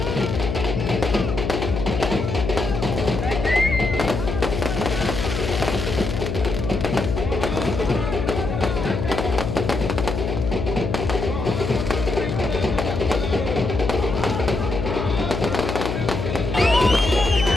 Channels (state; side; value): noise; left; hum, 3 dB below the sound